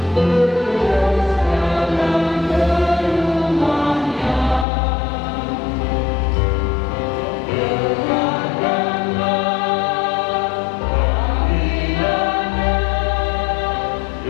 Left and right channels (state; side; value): drops out; right; at 4.7 s